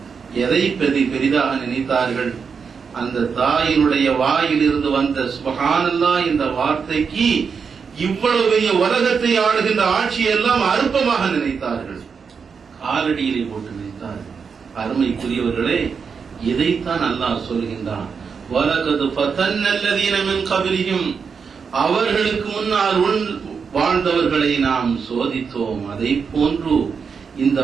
எதை பெரிதாக நினைத்தார்கள்? அந்த தாயினுடைய வாயிலிருந்து வந்த சுப்ஹானல்லாஹ் என்ற வார்த்தைக்கு இவ்வளவு பெரிய உலகத்தை ஆளுகின்ற ஆட்சியெல்லாம் அற்பமாக நினைத்தார்கள், காலடியிலே போட்டு நினைத்தார்கள். அருமைக்குரியவர்களே, இதைத்தான் அல்லாஹ் சொல்கின்றான், வலகத் ஃபதன்னல்லதீன மின் கப்லிஹிம், அவர்களுக்கு முன்னால் வாழ்ந்தவர்களை நாம் சோதித்தோம், அதை போன்று இந்த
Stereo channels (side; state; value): left; quieter; 5.9 dB